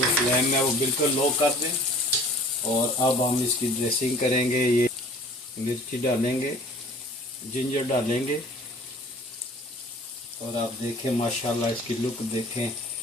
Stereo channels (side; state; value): both; normal; correlation 0.48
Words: फ्लेम है वो बिल्कुल लो कर दें और अब हम इसकी ड्रेसिंग करेंगे। ये मिर्ची डालेंगे, जिंजर डालेंगे और आप देखें माशाल्लाह इसकी लुक देखें,